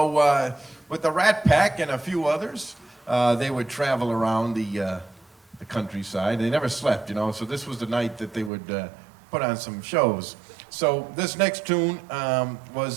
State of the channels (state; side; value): drops out; left; at 8.5 s